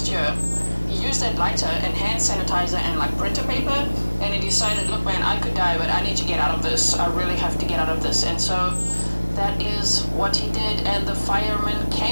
year. He used that lighter and hand sanitizer and like printer paper, and he decided, look man, I could die, but I need to get out of this. I really have to get out of this. And so that is what he did, and the fireman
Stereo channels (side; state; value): both; inverted; correlation -1.00